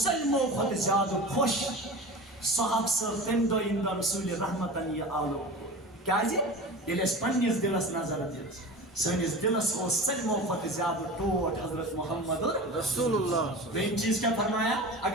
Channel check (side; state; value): both; normal; correlation 0.33